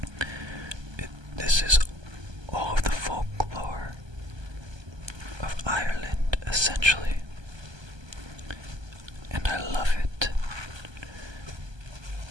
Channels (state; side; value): late; left; 1.2 ms